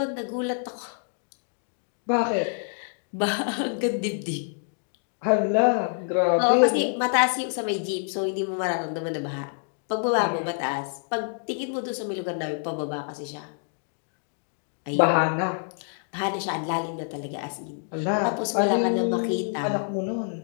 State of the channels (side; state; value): right; silent; 60 dB below the other